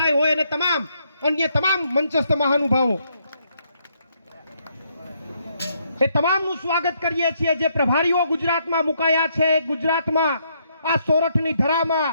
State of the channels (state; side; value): inverted; both; correlation -0.73